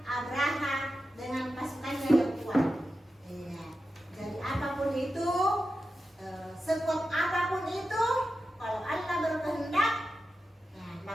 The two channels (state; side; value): normal; both; correlation 0.91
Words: Abraha dengan pasukannya yang kuat. Iya. Jadi apapun itu, sekuat apapun itu, kalau Allah berkehendak, nah,